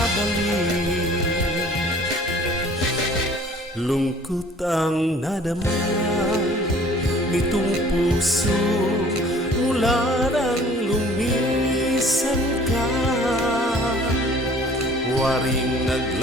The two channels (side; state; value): both; normal; correlation 0.52